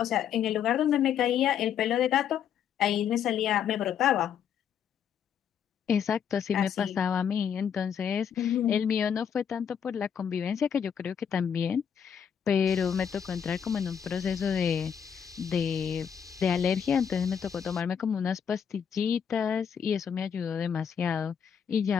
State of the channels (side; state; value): right; quieter; 8.0 dB